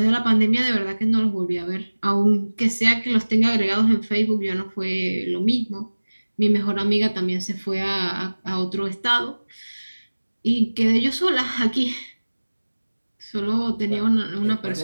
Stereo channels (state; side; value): inverted; both; correlation -1.00